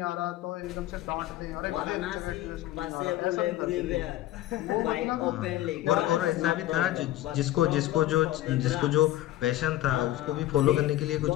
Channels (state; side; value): quieter; right; 14.8 dB